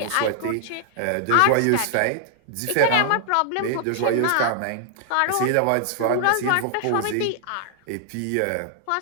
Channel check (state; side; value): different; both; correlation -0.01